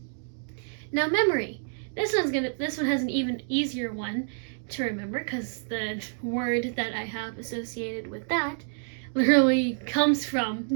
Now memory. This one has an even easier one to remember because the word that I have associated with that literally comes from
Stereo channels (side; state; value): left; silent; digital silence